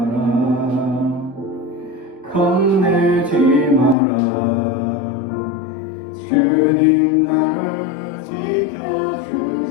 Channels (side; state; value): right; drops out; at 4.0 s